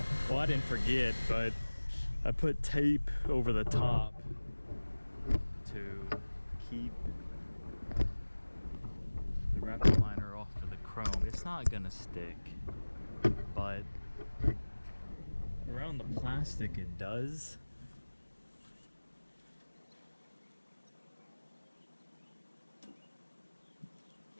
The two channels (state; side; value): inverted; both; correlation -1.00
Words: well, I didn't forget, but I put tape over the top to keep the Raptor Liner off of the chrome. It's not gonna stick, but around the plastic it does.